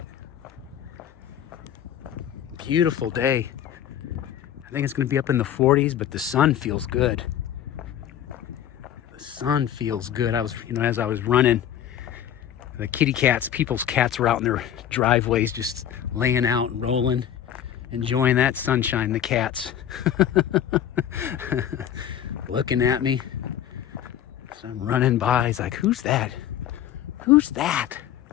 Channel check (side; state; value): right; quieter; 10.4 dB